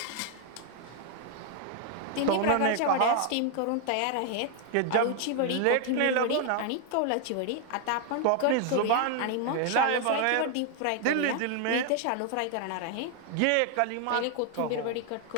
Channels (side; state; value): both; different; correlation 0.00